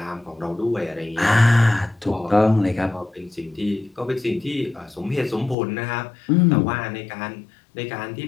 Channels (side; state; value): right; drops out; at 5.6 s